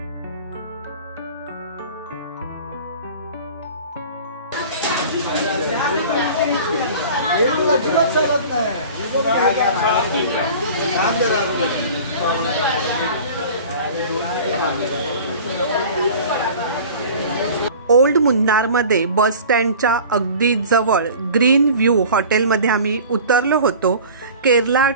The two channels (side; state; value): both; inverted; correlation -0.41